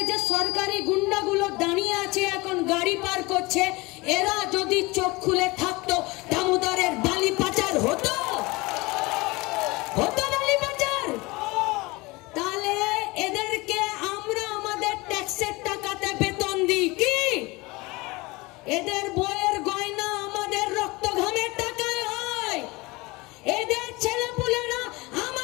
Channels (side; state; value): right; quieter; 23.4 dB